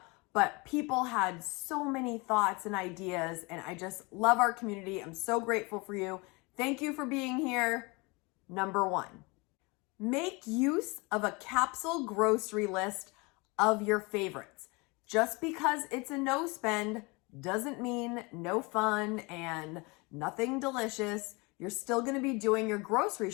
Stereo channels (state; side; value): quieter; right; 27.1 dB